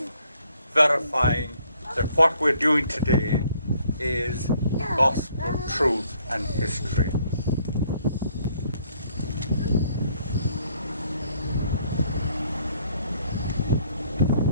verifying that what we're doing today is gospel truth and history.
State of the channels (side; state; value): both; inverted; correlation -0.65